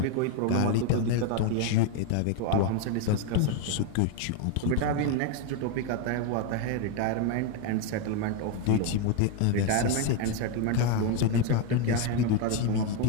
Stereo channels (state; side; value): different; both; correlation 0.01